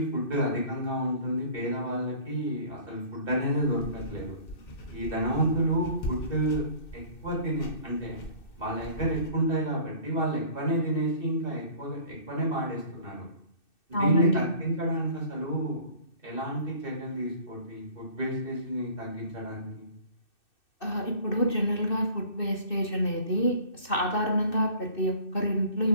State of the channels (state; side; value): late; right; 2.6 ms